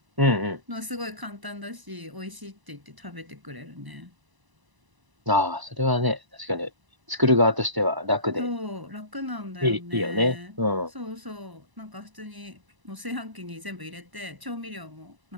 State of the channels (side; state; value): left; late; 1.0 ms